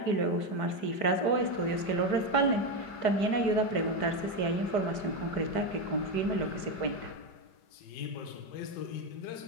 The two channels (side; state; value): right; late; 4.6 ms